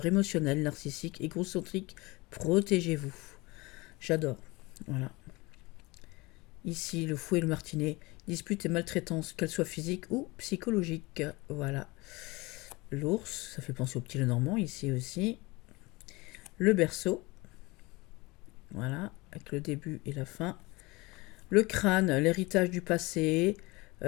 émotionnel, narcissique, égocentrique, protégez-vous. J'adore, voilà. Ici, le fouet et le martinet, dispute et maltraitance, qu'elle soit physique ou psychologique. Voilà. L'ours, ça fait penser au petit Lenormand, ici aussi. Le berceau, voilà, avec le début et la fin. Le crâne, l'héritage du passé,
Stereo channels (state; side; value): quieter; right; 23.5 dB